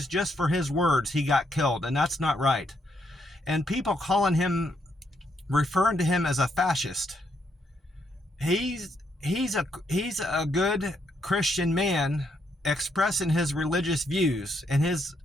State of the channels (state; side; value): normal; both; correlation 0.75